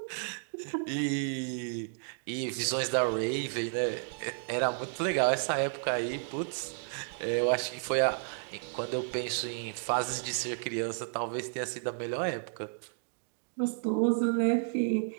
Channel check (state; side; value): silent; left; digital silence